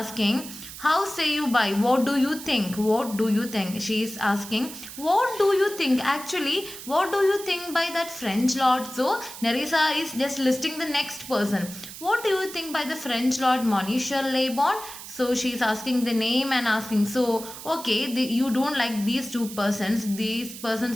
how say you by? What do you think? What do you think? She is asking, what do you think? Actually, what do you think by that French lord? So, Nerissa is just listing the next person. What do you think by the French lord, Monsieur Lebon? So, she is asking the name and asking, so, okay, you don't like these two persons. These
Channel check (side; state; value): right; noise; hiss, 12 dB below the sound